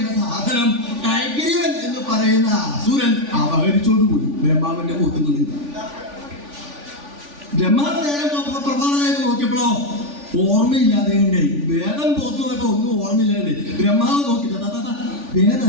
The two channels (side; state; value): left; late; 3.5 ms